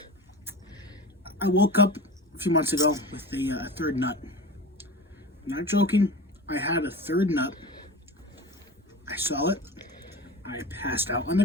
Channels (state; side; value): normal; both; correlation 0.32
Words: I woke up a few months ago with a third nut. I'm not joking. I had a third nut. I saw it. I passed out on